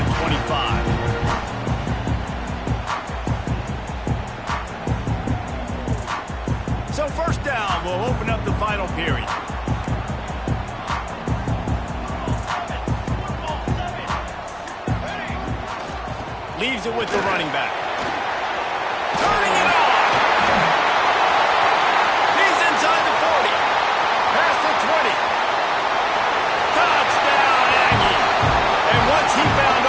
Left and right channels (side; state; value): both; identical; correlation 1.00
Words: 25. So first down, we'll open up the final period. Leaves it with the running back. Turning it on. He's inside the 40. Past the 20. Touchdown, Aggie. And once he found